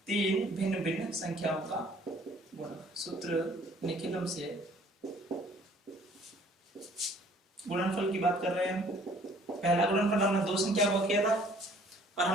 तीन भिन्न भिन्न संख्याओं का गुणा। सूत्र निखिलम से गुणनफल की बात कर रहे हैं। पहला गुणनफल हमने दो संख्या को किया था और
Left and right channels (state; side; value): normal; both; correlation 0.57